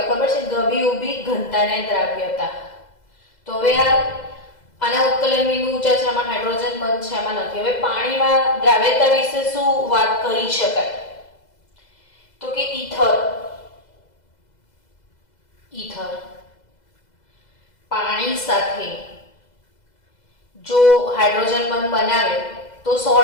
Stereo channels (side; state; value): right; late; 2.0 ms